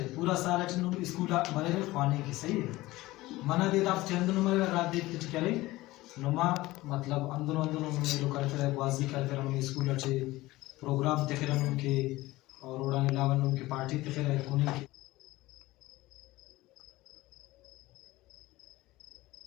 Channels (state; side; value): quieter; right; 18.6 dB